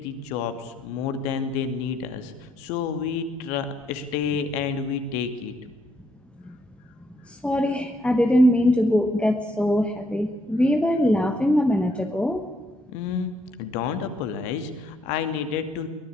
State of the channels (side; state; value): both; normal; correlation 0.72